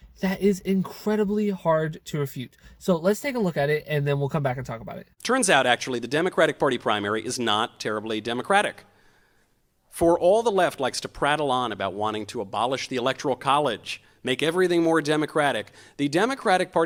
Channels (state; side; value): identical; both; correlation 1.00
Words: that is incredibly hard to refute. So let's take a look at it, and then we'll come back and talk about it. Turns out, actually, the Democratic Party primary is not terribly democratic. For all the left likes to prattle on about wanting to abolish the Electoral College, make everything more democratic, the Democratic